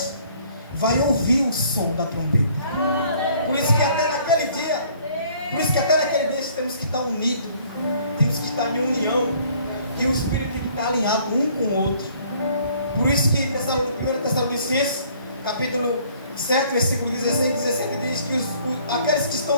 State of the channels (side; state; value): both; inverted; correlation -0.59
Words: vai ouvir o som da trombeta. Por isso que até naquele dia temos que estar unidos, temos que estar em união, e o Espírito tem que estar alinhado um com o outro. Por isso que 1 Tessalonicenses, capítulo 7, versículo 16 e 17 diz que aqueles que